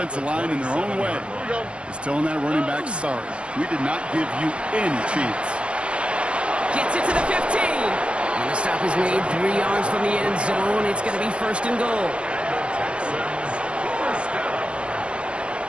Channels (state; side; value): late; left; 0.058 ms